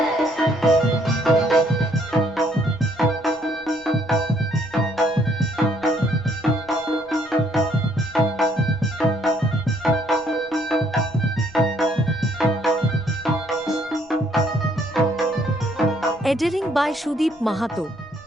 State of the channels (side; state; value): left; noise; rumble, 28 dB below the sound